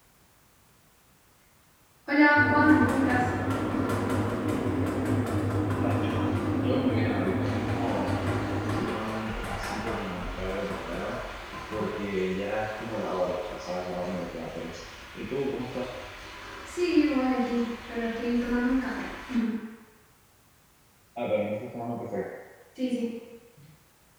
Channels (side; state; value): both; identical; correlation 1.00